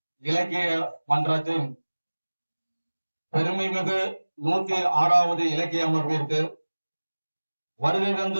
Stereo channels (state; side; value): inverted; both; correlation -1.00